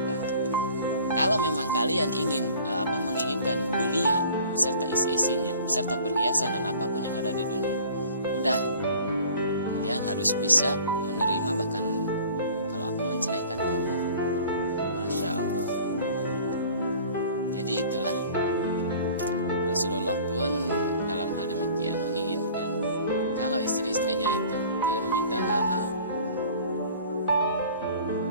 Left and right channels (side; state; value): both; inverted; correlation -0.48